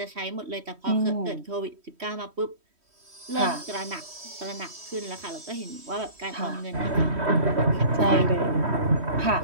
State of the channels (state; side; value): late; left; 3.1 ms